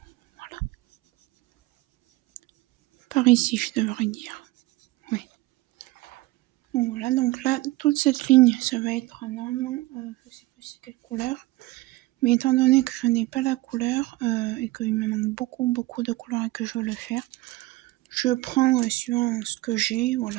voilà. Par ici je devrais dire, oui. Donc voilà, donc là toute cette ligne ça va être un homme, je sais plus c'est quelle couleur. Mais étant donné que je n'ai pas la couleur et qu'il me manque beaucoup de couleurs et que je veux le faire, je prends suivant ce que j'ai,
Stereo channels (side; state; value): left; quieter; 19.6 dB